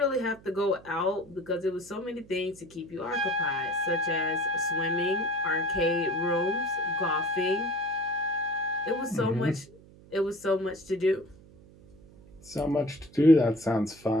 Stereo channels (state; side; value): noise; right; hum, 23 dB below the sound